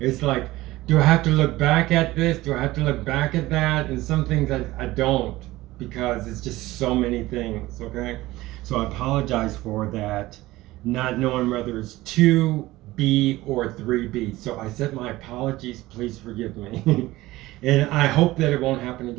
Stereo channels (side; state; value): left; quieter; 18.0 dB